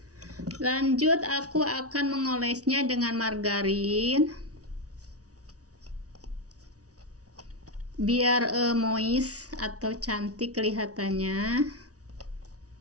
Lanjut aku akan mengolesnya dengan margarin biar moist atau cantik kelihatannya.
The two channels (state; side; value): late; left; 0.67 ms